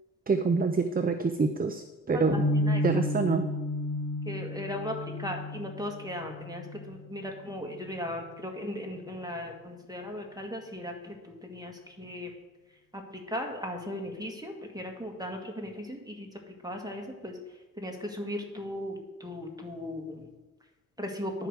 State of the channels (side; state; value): both; normal; correlation 0.45